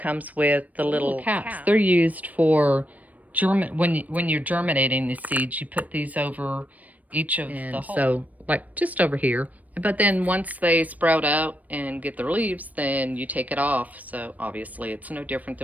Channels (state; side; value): late; left; 0.074 ms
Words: with the little caps. They're used for when you're germinating the seeds. You put these over each of the holes. So like just over here. But then once they sprout out and get their leaves, then you take it off. So obviously it's no different